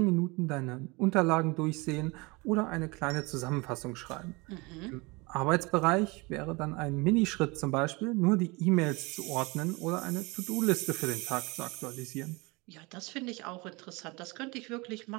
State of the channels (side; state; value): left; quieter; 25.9 dB